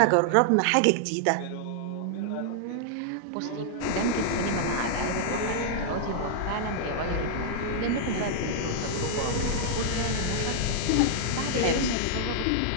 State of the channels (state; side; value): different; both; correlation -0.01